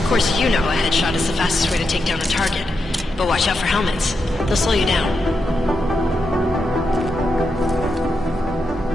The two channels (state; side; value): normal; both; correlation 0.85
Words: course, you know a headshot is the fastest way to take down a target. But watch out for helmets. They'll slow you down.